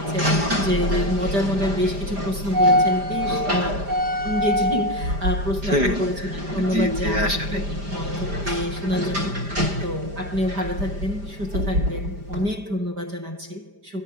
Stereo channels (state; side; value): late; left; 5.0 ms